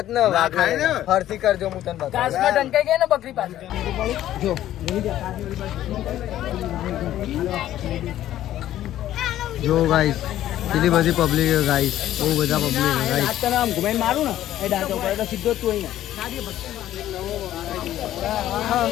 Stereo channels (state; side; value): quieter; right; 12.9 dB